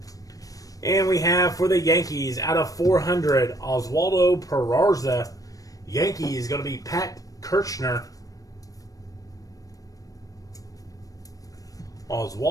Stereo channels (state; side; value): late; right; 0.17 ms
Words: And we have for the Yankees out of 400, Oswaldo Peraza. Yankees going to be Pat Kirchner.